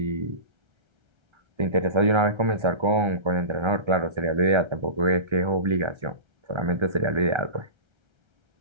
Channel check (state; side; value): late; left; 1.3 ms